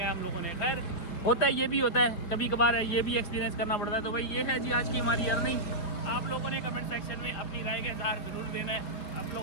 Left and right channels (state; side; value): late; right; 5.3 ms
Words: है हम लोगों ने। खैर होता है, ये भी होता है, कभी कभार है, ये भी एक्सपीरियंस करना पड़ता है। तो भाई ये है जी आज की हमारी अर्निंग। आप लोगों ने कमेंट सेक्शन में अपनी राय का इज़हार ज़रूर देना है। आप